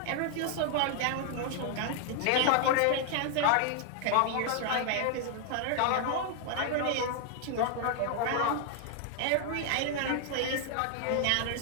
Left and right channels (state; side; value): different; both; correlation 0.00